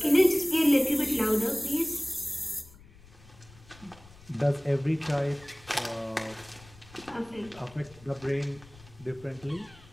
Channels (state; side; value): noise; left; rumble, 23 dB below the sound